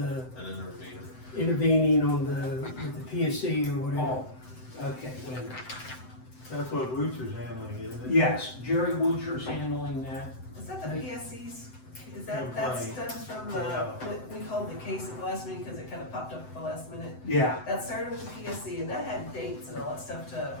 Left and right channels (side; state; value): right; late; 7.8 ms